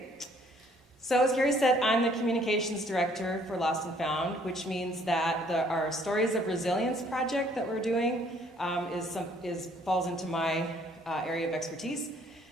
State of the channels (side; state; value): both; normal; correlation 0.62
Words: So as Carrie said, I'm the Communications Director for Lost and Found, which means that our Stories of Resilience project that we're doing falls into my area of expertise.